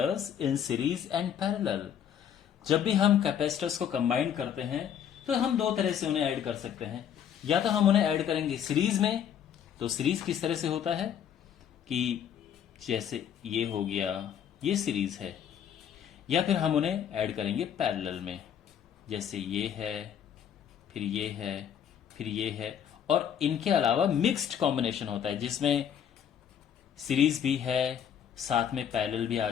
in series and parallel. जब भी हम कैपेसिटर्स को कंबाइन करते हैं तो हम दो तरह से उन्हें ऐड कर सकते हैं। या तो हम उन्हें ऐड करेंगे सीरीज में। तो सीरीज किस तरह से होता है कि जैसे ये हो गया, ये सीरीज है। या फिर हम उन्हें ऐड करेंगे पैरेलल में, जैसे ये है, फिर ये है, फिर ये है। और इनके अलावा मिक्स्ड कॉम्बिनेशन होता है जिसमें सीरीज भी है, साथ में पैरेलल भी आ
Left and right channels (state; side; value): quieter; right; 9.0 dB